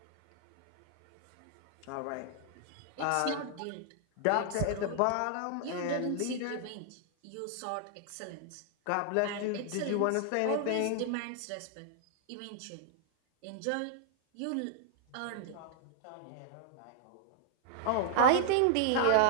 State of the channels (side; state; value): both; different; correlation -0.01